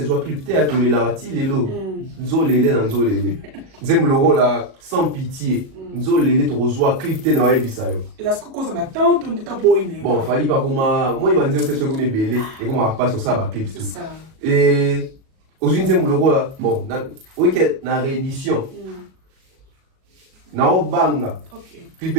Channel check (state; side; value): late; left; 37 ms